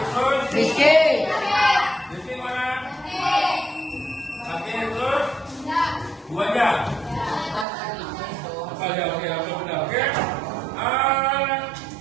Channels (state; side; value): drops out; left; at 7.7 s